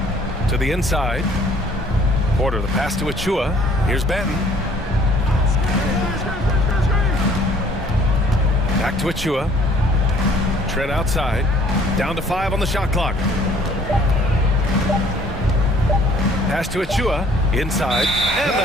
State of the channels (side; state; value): both; normal; correlation 0.57